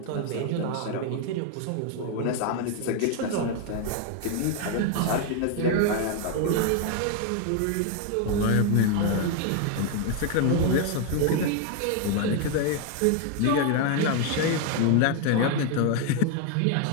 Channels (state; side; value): different; both; correlation 0.01